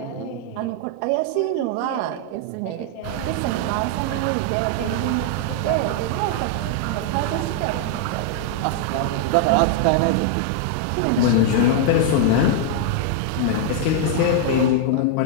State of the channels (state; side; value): different; both; correlation 0.00